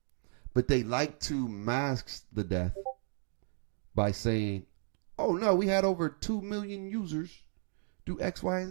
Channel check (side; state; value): left; silent; 55 dB below the other